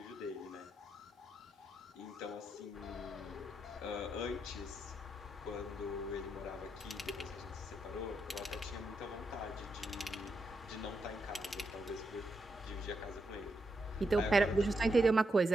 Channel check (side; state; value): both; normal; correlation 0.82